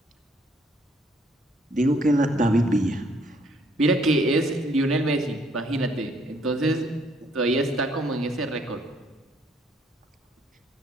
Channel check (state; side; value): normal; both; correlation 0.66